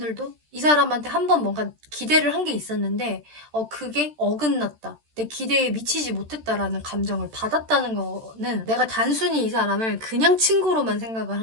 이 사람한테 한 번 뭔가 기대를 한 게 있었는데 그게 어긋났다. 내 기대에 미치지 못했다라는 감정을 받았다는 거는 내가 단순히 이 사람을 그냥 친구로만 생각을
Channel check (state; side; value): late; left; 13 ms